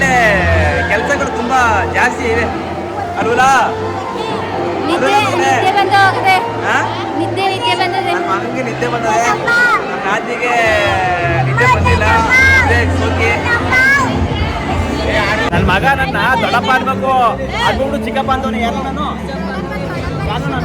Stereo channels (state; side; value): identical; both; correlation 1.00